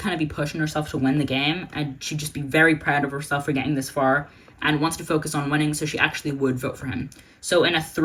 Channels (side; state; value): both; identical; correlation 1.00